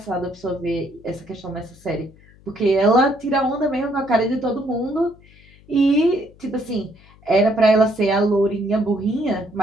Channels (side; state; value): left; noise; hum, 26 dB below the sound